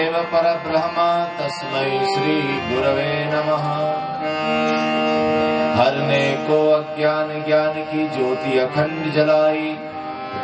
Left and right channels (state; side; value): identical; both; correlation 1.00